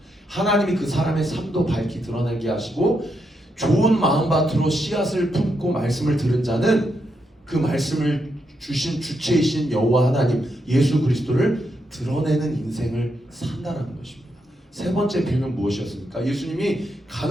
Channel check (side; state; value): both; normal; correlation 0.81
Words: 하나님이 그 사람의 삶도 밝히 드러나게 하시고 좋은 마음밭으로 씨앗을 품고 말씀을 들은 자는 그 말씀을 주신 주체이신 여호와 하나님 예수 그리스도를 드러내는 인생을 산다는 것입니다. 세 번째 비유는 무엇이었습니까? 예수님이